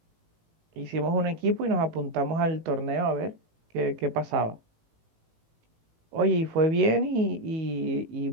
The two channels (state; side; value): late; left; 18 ms